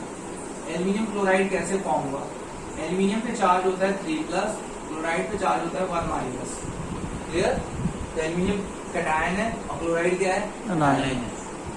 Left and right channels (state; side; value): identical; both; correlation 1.00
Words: Aluminium chloride कैसे फॉर्म हुआ, एल्यूमिनियम पे चार्ज होता है 3 प्लस, क्लोराइड पे चार्ज होता है 1 माइनस। क्लियर? तो एल्यूमिनियम कटायन है और क्लोराइड क्या है, अनायन है।